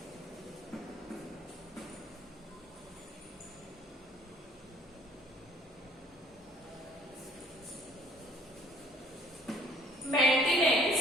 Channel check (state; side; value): normal; both; correlation 0.57